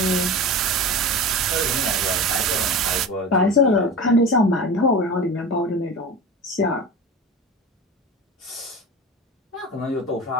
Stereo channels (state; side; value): normal; both; correlation 0.30